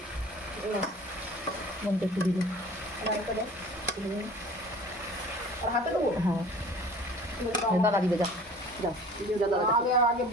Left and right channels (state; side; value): normal; both; correlation 0.45